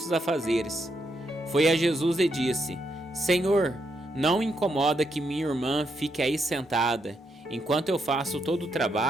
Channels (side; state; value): both; normal; correlation 0.79